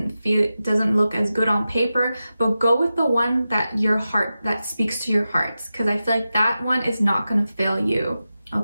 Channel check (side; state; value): both; inverted; correlation -0.93